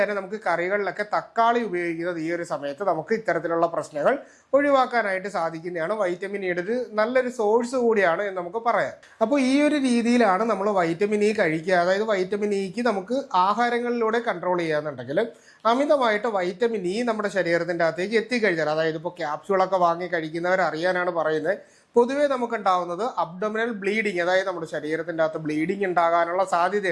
നമുക്ക് കറികളിലൊക്കെ തക്കാളി ഉപയോഗിക്കുന്നത് ഈ ഒരു സമയത്ത് നമുക്ക് ഇത്തരത്തിലുള്ള പ്രശ്നങ്ങൾ ഒഴിവാക്കാനായിട്ട് സാധിക്കുന്നതാണ്. വൈറ്റമിൻ ഇയുടെ ഒരു നല്ലൊരു സോഴ്സ് കൂടിയാണ് എന്ന് നമുക്ക് പറയാം. അപ്പോൾ ഈ ഒരു രീതിയിലാണ് നമ്മൾ വൈറ്റമിൻ ഇ കഴിക്കുക. അതായത് വൈറ്റമിൻ ഇക്ക് നമുക്ക് ആഹാരങ്ങളിലൂടെ കൺട്രോൾ ചെയ്യാന്നുണ്ടെങ്കിൽ അമിതമായിട്ട് വൈറ്റമിൻ ഇ നമ്മുടെ ശരീരത്തിൻ്റെ അകത്തേക്ക് എത്തിക്കഴിഞ്ഞാൽ, അതായത് ഇപ്പോൾ ക്യാപ്സ്യൂളൊക്കെ വാങ്ങി കഴിക്കുന്നവർ അറിയാനാണ് പറയുന്നത്, പൊതുവേ നമുക്കുണ്ടാവുന്നത് അബ്ഡോമിനൽ ബ്ലീഡിങ്, അതായത് നമ്മുടെ ശരീരത്തിൻ്റെ അകത്ത് ബ്ലീഡിങ് ഉണ്ടാകാനുള്ള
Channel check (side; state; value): both; identical; correlation 1.00